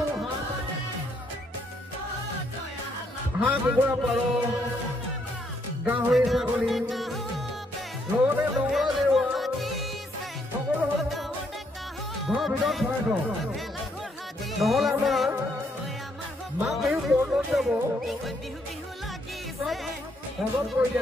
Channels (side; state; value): both; normal; correlation 0.73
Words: হাঁহ কুকুৰা পাৰ গাহৰি ছাগলী লগতে নগৰ জেওৰা সকলো ঘৰৰ ভিতৰত ভৰাই থওঁ নহ'লে আমাৰ মাঘ বিহু পৰ্বত যাব সহজ কৰি